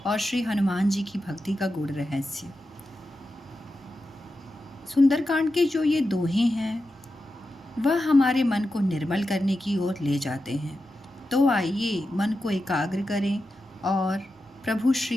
और श्री हनुमान जी की भक्ति का गूढ़ रहस्य। सुंदरकांड के जो ये दोहे हैं वह हमारे मन को निर्मल करने की ओर ले जाते हैं। तो आइए मन को एकाग्र करें और प्रभु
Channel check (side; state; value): both; normal; correlation 0.90